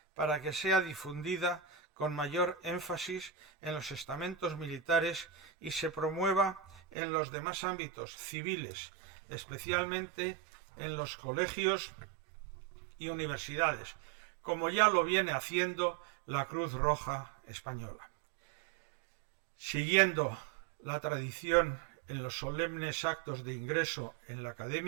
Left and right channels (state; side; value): drops out; left; at 6.8 s